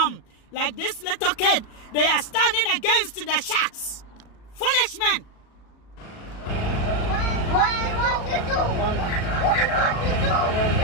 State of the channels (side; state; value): right; late; 37 ms